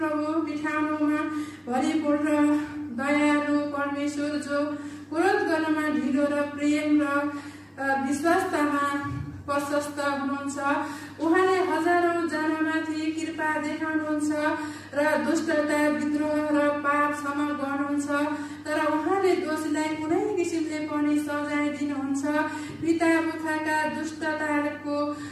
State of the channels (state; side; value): identical; both; correlation 1.00